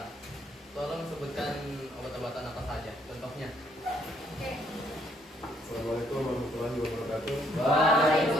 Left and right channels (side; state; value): both; normal; correlation 0.69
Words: Tolong sebutkan obat-obatan apa saja. Contohnya. Oke. Assalamualaikum warahmatullahi wabarakatuh.